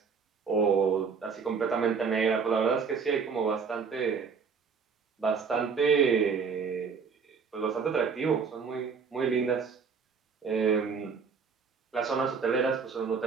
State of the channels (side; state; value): left; quieter; 5.7 dB